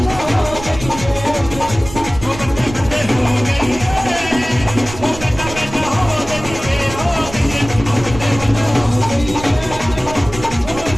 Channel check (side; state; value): right; noise; rumble, 12 dB below the sound